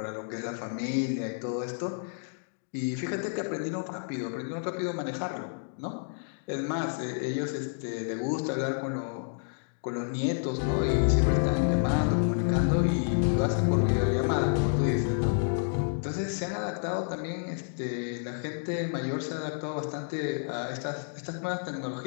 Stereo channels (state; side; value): silent; right; digital silence